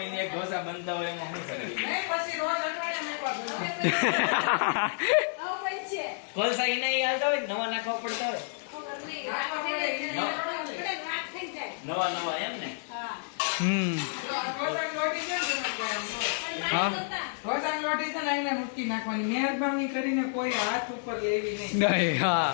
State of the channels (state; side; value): silent; right; 58 dB below the other